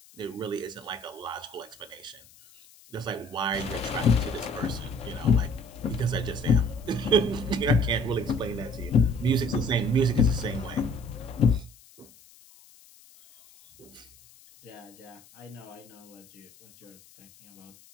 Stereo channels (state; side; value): noise; left; hiss, 25 dB below the sound